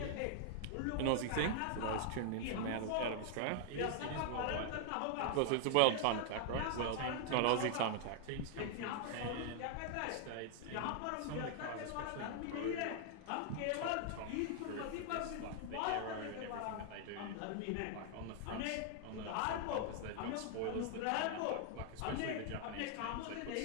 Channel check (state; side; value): different; both; correlation 0.00